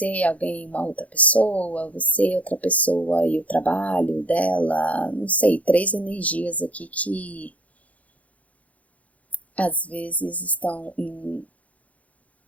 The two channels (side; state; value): right; late; 0.069 ms